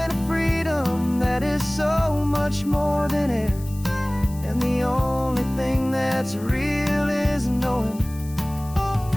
a freedom that is so much more than air. And the only thing that's real is knowing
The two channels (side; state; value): left; noise; hiss, 20 dB below the sound